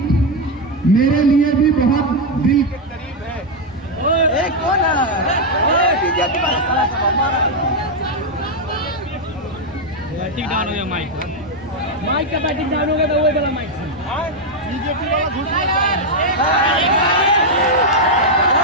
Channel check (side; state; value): both; normal; correlation 0.02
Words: मेरे लिए भी बहुत दिल के करीब है। एक कौन है बीजेपी वाला साला सब हमारा बैटिंग डाउन हो गया माइक का बैटिंग डाउन हो गया तो वही वाला माइक बीजेपी वाला घुस